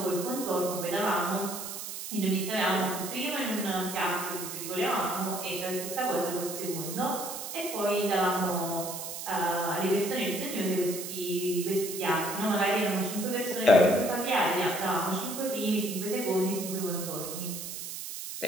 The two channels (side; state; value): right; noise; hiss, 7 dB below the sound